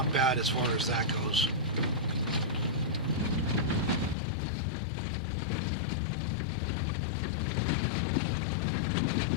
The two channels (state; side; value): drops out; right; at 4.2 s